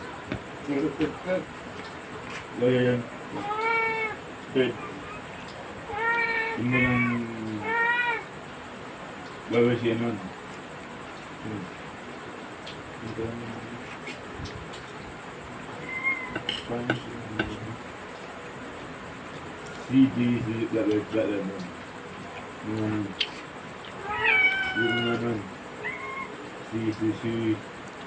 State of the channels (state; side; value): identical; both; correlation 1.00